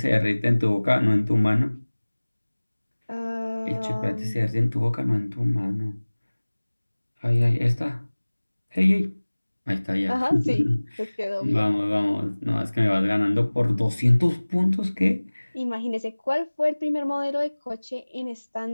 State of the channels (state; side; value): inverted; both; correlation -1.00